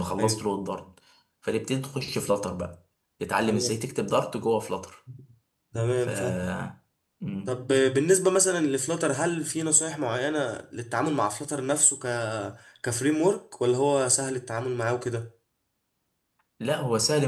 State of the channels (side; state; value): both; identical; correlation 1.00